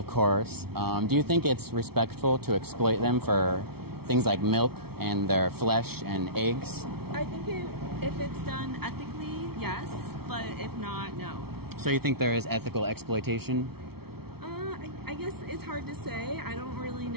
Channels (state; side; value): late; left; 0.95 ms